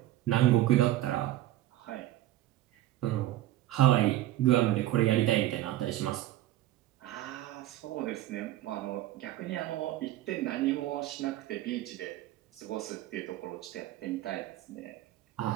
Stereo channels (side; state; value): left; quieter; 14.6 dB